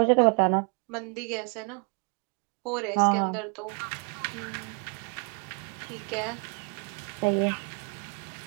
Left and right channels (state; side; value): quieter; left; 38.7 dB